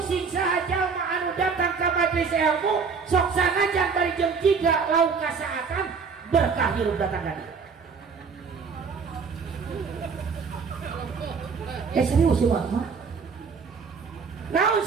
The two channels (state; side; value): quieter; left; 5.5 dB